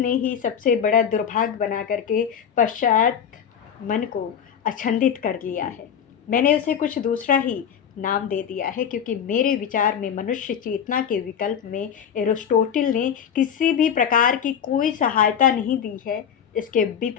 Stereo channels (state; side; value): quieter; right; 8.2 dB